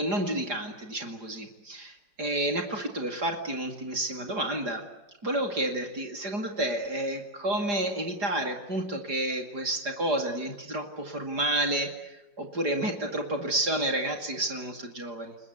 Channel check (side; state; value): left; late; 4.9 ms